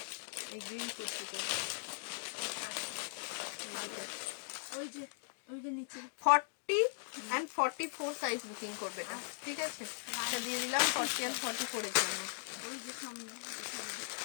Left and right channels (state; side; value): silent; right; digital silence